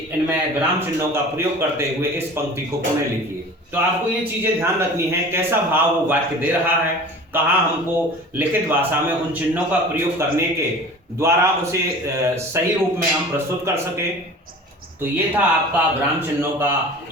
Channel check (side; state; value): both; normal; correlation 0.40